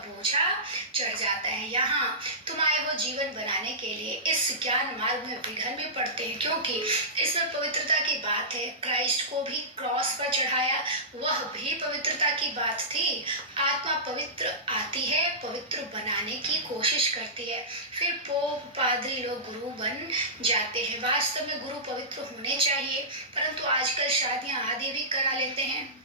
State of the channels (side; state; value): both; normal; correlation -0.19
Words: चढ़ जाता है। यहाँ तुम आए हो जीवन बनाने के लिए, इस ज्ञान मार्ग में विघ्न भी पड़ते हैं, क्योंकि इसमें पवित्रता की बात है। क्राइस्ट को भी क्रॉस पर चढ़ाया, वह भी पवित्रता की बात थी। आत्मा पवित्र आती है, पवित्र बनाने की कोशिश करती है, फिर पोप पादरी लोग गुरु बन जाते हैं। वास्तव में गुरु पवित्र होने चाहिए, परंतु आजकल शादियां आदि भी करा लेते हैं।